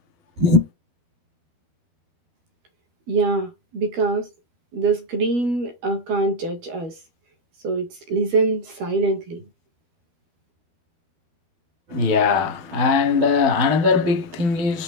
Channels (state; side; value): late; left; 12 ms